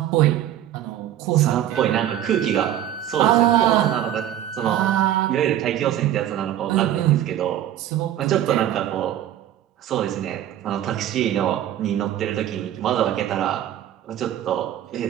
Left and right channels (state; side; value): quieter; left; 11.8 dB